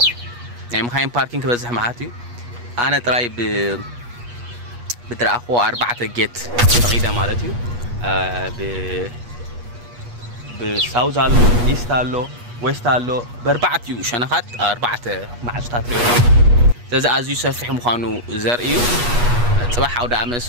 يعني مخاين باركينج بزح معاتي أنا تراي بدرأخو 4 جيت تقيدة مالتيو بساوز هالو إيست هالو ويست هالو ب4 شنخات 4 معجتات تزا أزيو سفح مخانو زرئيو صباح عودة عمل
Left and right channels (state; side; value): late; left; 8.3 ms